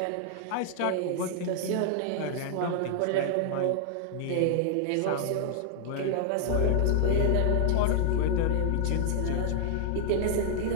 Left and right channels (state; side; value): different; both; correlation 0.00